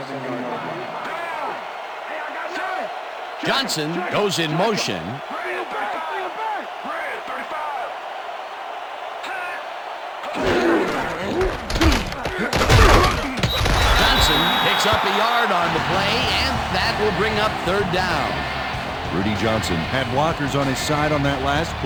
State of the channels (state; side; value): identical; both; correlation 1.00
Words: Johnson goes in motion. Johnson picks up a yard on the play, and that will bring up third down. Rudy Johnson had blockers on his side on that last